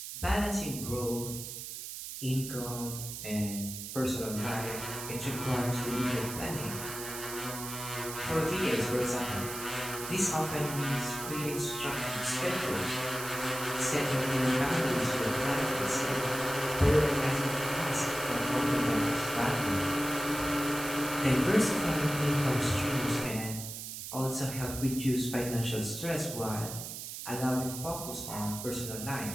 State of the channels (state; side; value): noise; right; hiss, 8 dB below the sound